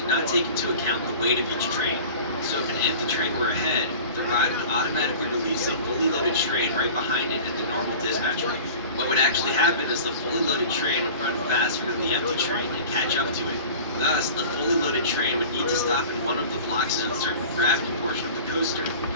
not take into account the weight of each train, so if an empty train were ahead, the ride would automatically release a fully loaded train right behind it at the normal dispatch rate. What would actually happen is the fully loaded train would run faster than the empty train and catch up to it. Thus, the fully loaded train would need to stop in one of the block zones during the gravity portion of the coaster,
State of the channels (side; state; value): both; inverted; correlation -0.40